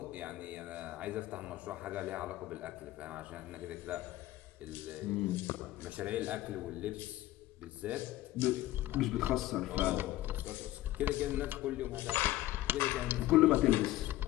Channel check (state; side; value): quieter; right; 15.8 dB